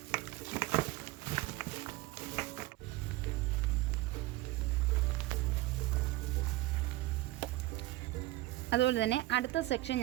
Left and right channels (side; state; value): left; quieter; 18.1 dB